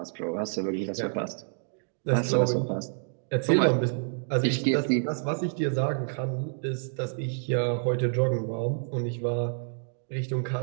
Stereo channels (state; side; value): silent; left; digital silence